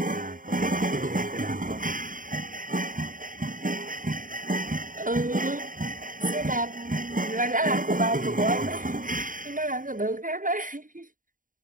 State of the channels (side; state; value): left; late; 0.39 ms